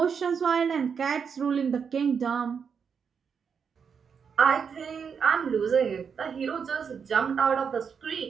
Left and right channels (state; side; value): quieter; left; 6.5 dB